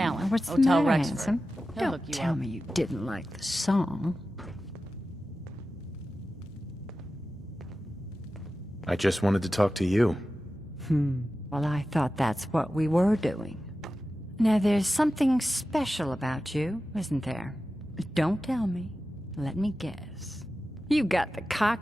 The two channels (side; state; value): both; normal; correlation 0.94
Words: What's the Hotel matter, Rexford. handsome? He'll Don't hook you tell up. me you didn't like the song. I just wanted to talk to you. Well, I thought that's what we were doing. Now, there's something special about you, isn't there? Don't tell me. Let me guess. You got the